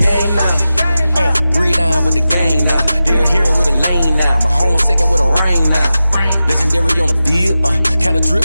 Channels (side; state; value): both; inverted; correlation -0.93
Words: now. Read on with the gang now. They're here with a lane now. My home second with a rain now. Legendary on the field, kinda